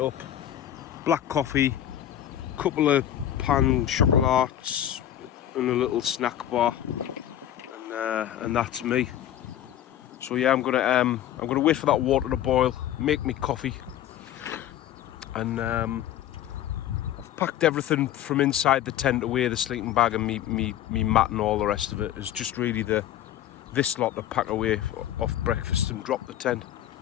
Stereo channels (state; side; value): quieter; right; 11.6 dB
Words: Black coffee, couple of pan chocolates and a little snack bar, and that's me. So yeah, I'm gonna wait for that water to boil, make me coffee, and I've packed everything from inside the tent away, the sleeping bag and me mat and all the rest of it. It's just really this lot to pack away off breakfast and drop the tent.